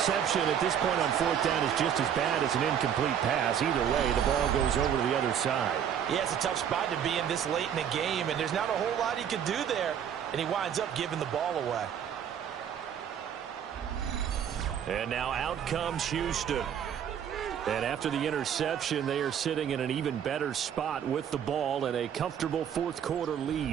at this point on 4th down is just as bad as an incomplete pass. Either way, the ball goes over to the other side. Yeah, it's a tough spot to be in this late in the game, and there's not a whole lot he could do there, and he winds up giving the ball away. And now out comes Houston. And after the interception, they are sitting in an even better spot with the ball and a comfortable 4th quarter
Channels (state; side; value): quieter; left; 8.8 dB